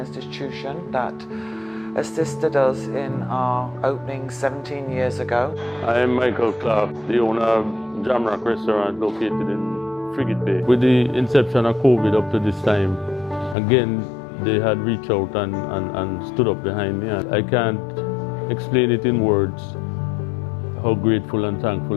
that assisted us in our opening 17 years ago. I am Michael Clark, the owner of Jamrock Restaurant located in Frigate Bay. With the inception of COVID up to this time, again, they had reached out and stood up behind me. I can't explain it in words how grateful and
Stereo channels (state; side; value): drops out; right; at 13.6 s